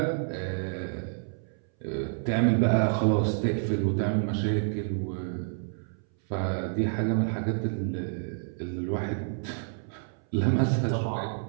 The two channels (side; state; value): left; silent; 59 dB below the other